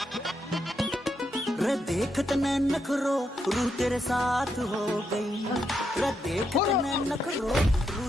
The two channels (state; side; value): normal; both; correlation 0.81